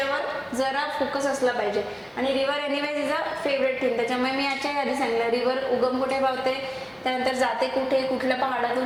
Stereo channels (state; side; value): identical; both; correlation 1.00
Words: जरा फोकस असला पाहिजे. आणि river anyways is a favourite thing, त्याच्यामुळे मी याच्या आधी सांगितलं रिव्हर उगम कुठे पावते, त्यानंतर जाते कुठे, कुठल्या